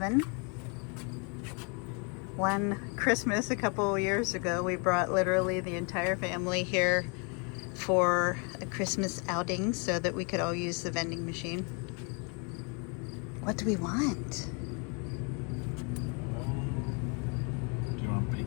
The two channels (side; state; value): right; quieter; 34.9 dB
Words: One Christmas a couple years ago, we brought literally the entire family here for a Christmas outing so that we could all use the vending machine. What do we want? Do you want